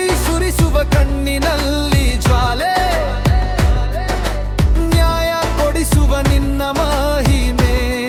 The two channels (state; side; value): identical; both; correlation 1.00